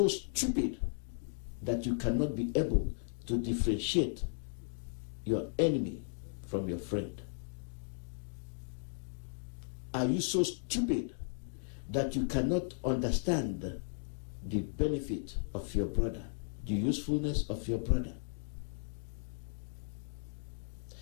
stupid that you cannot be able to differentiate your enemy from your friend? Are you so stupid that you cannot understand the benefit of your brother, the usefulness of your brother?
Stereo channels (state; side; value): silent; right; digital silence